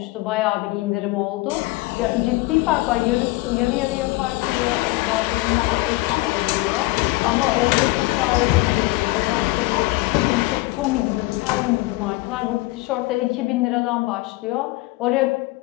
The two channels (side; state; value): right; quieter; 21.0 dB